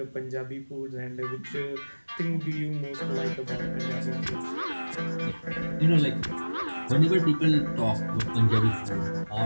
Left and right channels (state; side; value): inverted; both; correlation -1.00